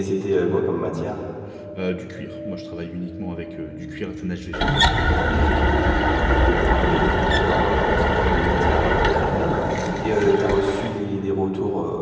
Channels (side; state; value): both; identical; correlation 1.00